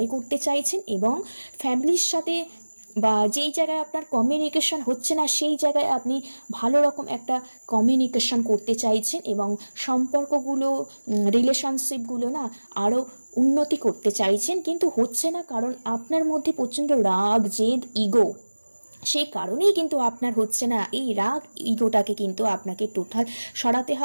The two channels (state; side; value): inverted; both; correlation -1.00